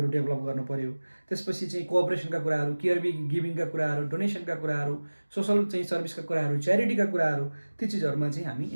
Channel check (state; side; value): inverted; both; correlation -1.00